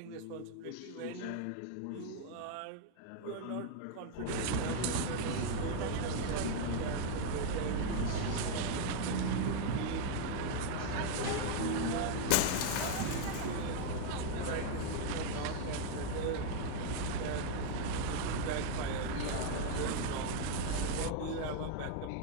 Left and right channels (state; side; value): different; both; correlation 0.00